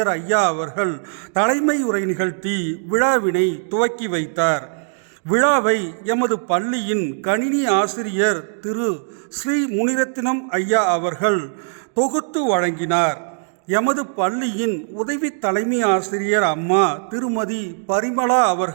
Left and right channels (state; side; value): silent; left; digital silence